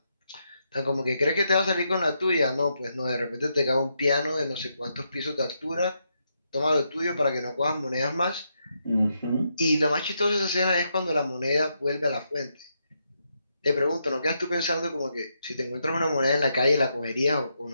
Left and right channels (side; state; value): both; inverted; correlation -0.81